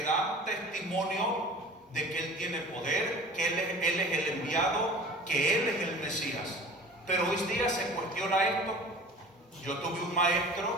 dan testimonio de que Él tiene poder, que Él es el enviado, que Él es el Mesías. Pero hoy día se cuestiona esto. Yo tuve un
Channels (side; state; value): both; normal; correlation 0.42